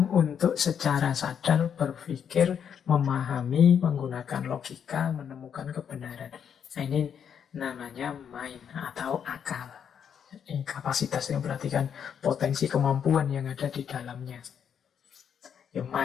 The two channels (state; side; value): quieter; right; 8.0 dB